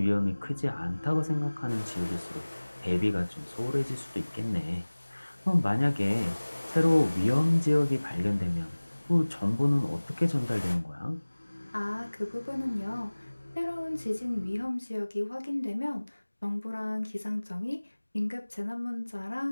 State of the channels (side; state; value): both; inverted; correlation -1.00